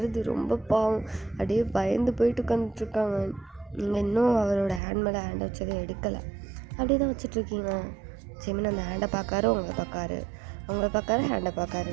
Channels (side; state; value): left; drops out; at 4.8 s